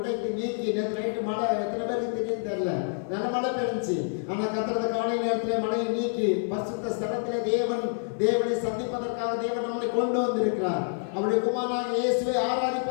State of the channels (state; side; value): silent; right; digital silence